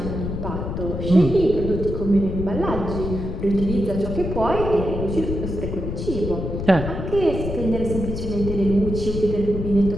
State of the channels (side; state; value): left; noise; rumble, 5 dB below the sound